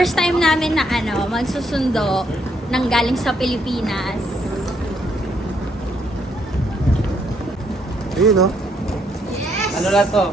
time namin na magsusundo ng galing sa Pilipinas. Ayun, no? Yes! Ano lang to?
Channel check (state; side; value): normal; both; correlation 0.72